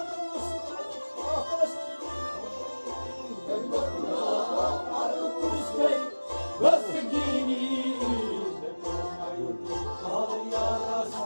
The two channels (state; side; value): inverted; both; correlation -1.00